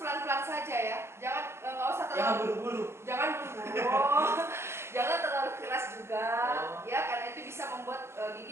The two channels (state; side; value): late; left; 0.12 ms